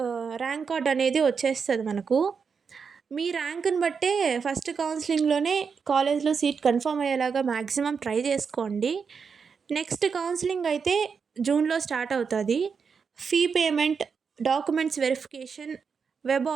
ర్యాంక్ కార్డ్ అనేది వచ్చేస్తుంది మనకు. మీ ర్యాంక్ని బట్టే ఫస్ట్ కౌన్సిలింగ్లోనే కాలేజ్లో సీట్ కన్ఫర్మ్ అయ్యేలాగా మ్యాక్సిమం ట్రై చేసుకోండి. నెక్స్ట్ కౌన్సిలింగ్ అయితే జూన్లో స్టార్ట్ అవుతుంది. Fee payment, documents verification, web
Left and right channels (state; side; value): quieter; left; 5.9 dB